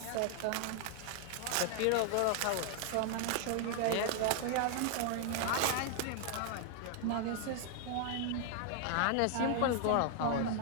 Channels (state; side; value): different; both; correlation 0.00